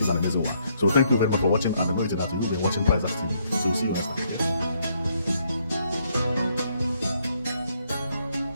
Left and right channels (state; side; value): inverted; both; correlation -0.72